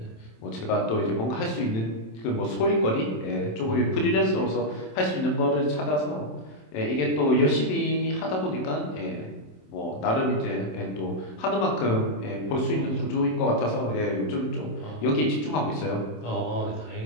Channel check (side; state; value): right; late; 27 ms